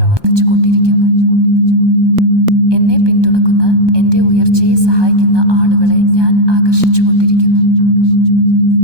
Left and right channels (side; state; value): left; late; 1.2 ms